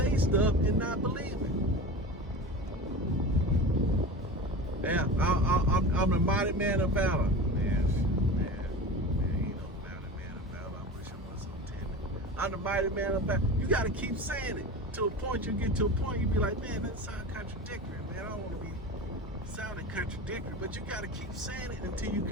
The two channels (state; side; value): normal; both; correlation 0.31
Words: stuff and not believe it. Yeah, I'm the mighty man of valor. Man, you know, mighty man of valor. I wish I was so timid. I'm the mighty man of valor. You got to keep saying it to a point. You get to a point, you be like, man, that sounds contradictory, man. I don't want to be sounding contradictory, but you got to keep saying it until you